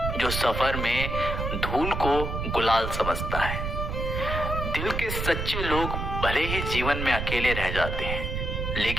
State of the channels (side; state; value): right; noise; rumble, 3 dB below the sound